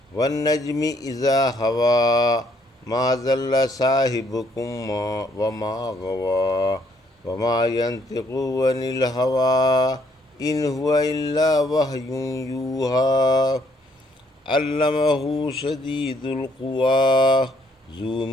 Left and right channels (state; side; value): normal; both; correlation 0.68